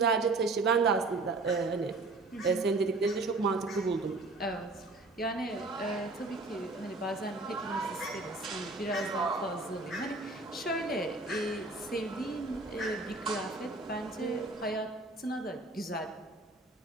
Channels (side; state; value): left; quieter; 3.2 dB